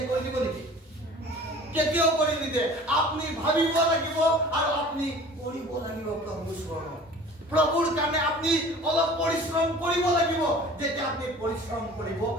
কৰি দিব নেকি কেতিয়াও কৰি নিদে আপনি ভাবিব লাগিব আৰু আপনি কৰিব লাগিব প্ৰভুৰ চৰণত প্ৰভুৰ কাৰণে আপনি অলপ পৰিশ্ৰম কৰিব লাগিব যেতিয়া আপনি পৰিশ্ৰম কৰিব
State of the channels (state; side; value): normal; both; correlation 0.44